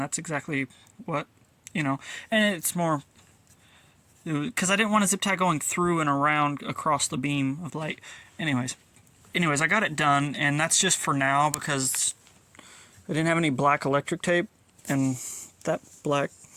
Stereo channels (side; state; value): both; identical; correlation 1.00